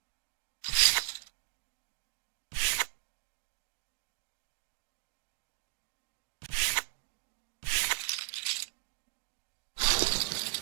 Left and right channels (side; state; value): left; silent; 54 dB below the other